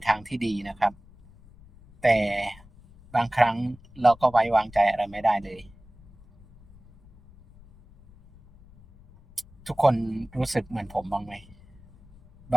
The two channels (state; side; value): noise; left; rumble, 24 dB below the sound